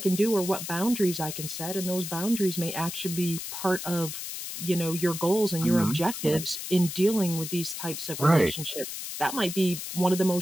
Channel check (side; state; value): left; noise; hiss, 7 dB below the sound